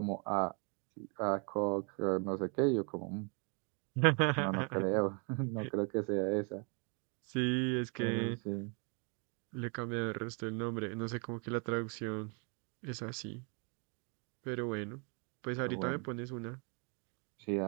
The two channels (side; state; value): left; quieter; 36.6 dB